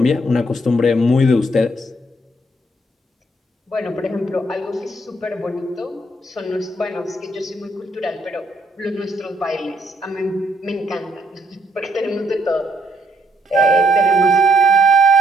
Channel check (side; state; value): both; normal; correlation 0.72